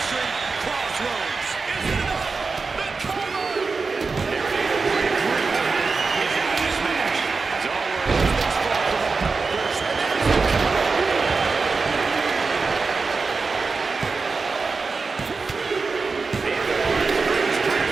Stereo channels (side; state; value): left; quieter; 4.4 dB